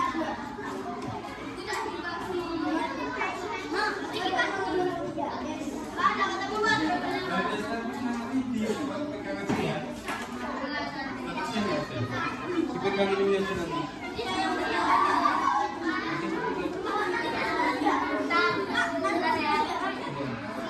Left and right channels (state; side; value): identical; both; correlation 1.00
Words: Pegang ini aja nanti.